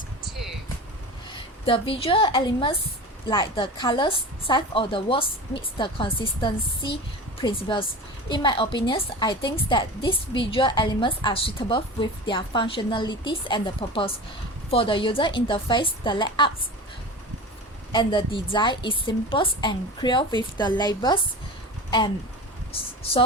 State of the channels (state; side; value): normal; both; correlation 0.32